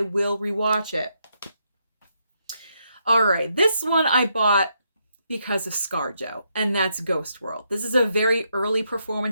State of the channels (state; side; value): inverted; both; correlation -0.78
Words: will rewatch it. All right, this one I bought because of ScarJo, and that's Ghost World. This is a very early